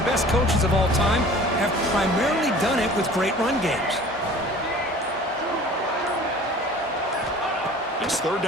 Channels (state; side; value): normal; both; correlation 0.45